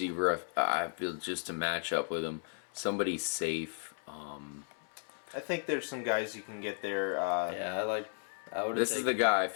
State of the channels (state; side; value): silent; right; 55 dB below the other